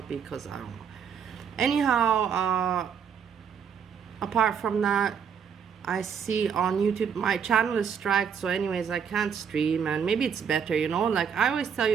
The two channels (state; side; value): quieter; left; 7.2 dB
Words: because I don't know. Anyhow, apart from that, I see on YouTube my channel is striked, so anyways I can't stream, and maybe it's better, like I always tell